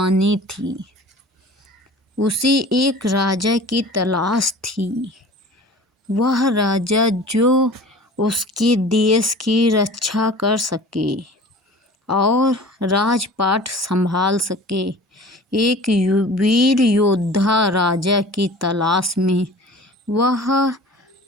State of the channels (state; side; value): normal; both; correlation 0.42